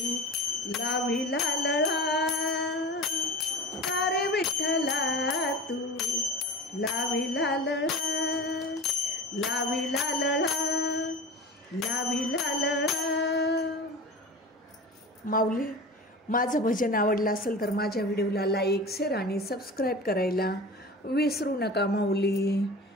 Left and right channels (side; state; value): both; normal; correlation 0.33